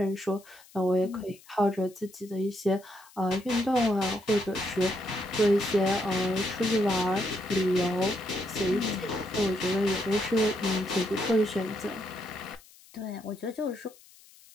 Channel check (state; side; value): noise; left; hiss, 25 dB below the sound